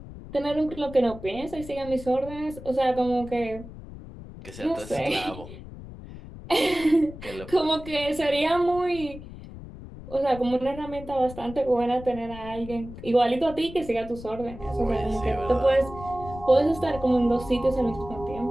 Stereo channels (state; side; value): noise; left; rumble, 14 dB below the sound